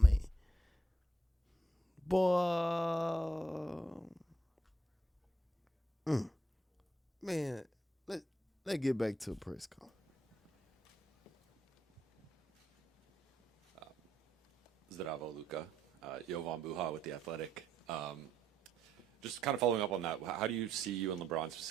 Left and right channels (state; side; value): normal; both; correlation 0.78